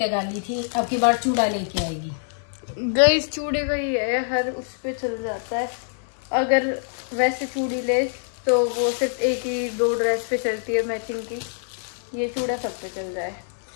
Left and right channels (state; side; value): silent; right; 58 dB below the other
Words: गाली थी, अब की बार चूड़ा लेके आएगी। गाइस चूड़े का ही है, हर उस पे चल जाता है। अगर वैसे चूड़ी ले तो वो सिर्फ 1 ही 2 ड्रेस पे चलती है मैचिंग की, ये चूड़ा सब पे चल जाए।